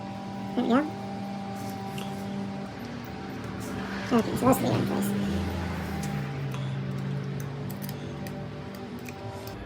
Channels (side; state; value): both; identical; correlation 1.00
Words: There we go. Okay, so those three are in place.